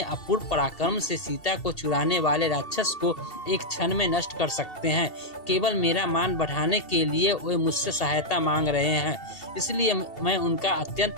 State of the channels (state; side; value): late; right; 2.7 ms